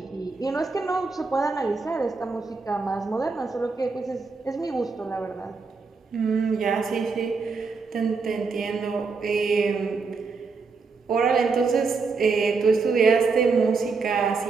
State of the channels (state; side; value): quieter; left; 4.5 dB